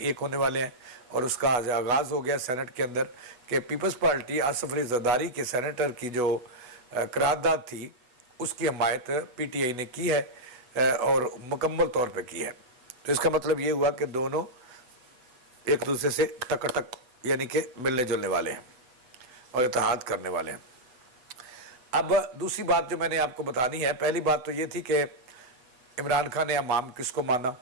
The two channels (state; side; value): late; left; 8.1 ms